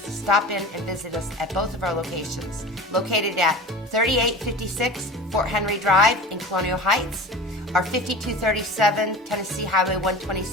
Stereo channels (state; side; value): normal; both; correlation 0.35